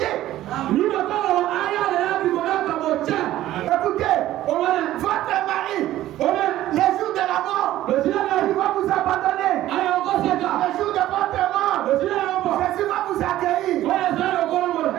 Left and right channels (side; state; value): left; quieter; 14.1 dB